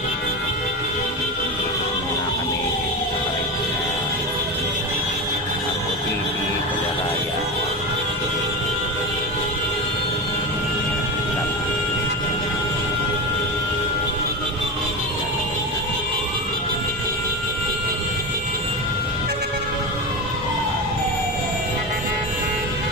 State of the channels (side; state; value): both; normal; correlation 0.21